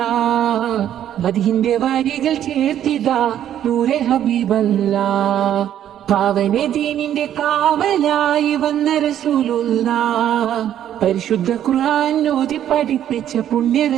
മദീന്റെ വരികൾ ചേർത്തിതാ നൂറെ ഹബീബല്ലാഹ് പാവന ദീനിന്റെ കാവലായി വന്ന റസൂലുള്ളാഹ് പരിശുദ്ധ ഖുർആൻ ഓതി പഠിപ്പിച്ച പുണ്യ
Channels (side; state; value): left; quieter; 10.8 dB